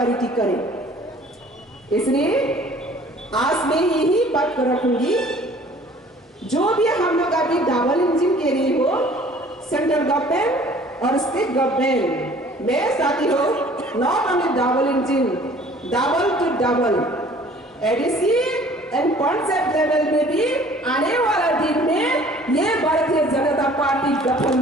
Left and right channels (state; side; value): normal; both; correlation 0.52